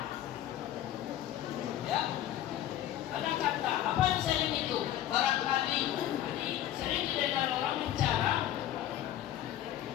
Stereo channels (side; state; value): right; quieter; 12.4 dB